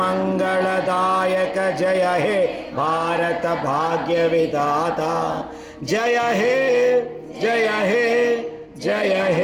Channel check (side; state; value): both; identical; correlation 1.00